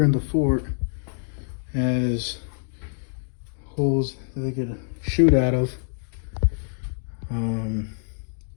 in the fort as holes that they could shoot out of.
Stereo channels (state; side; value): silent; right; digital silence